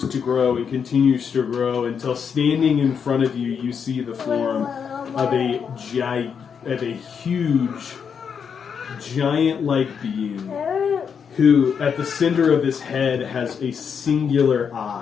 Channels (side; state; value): right; quieter; 6.8 dB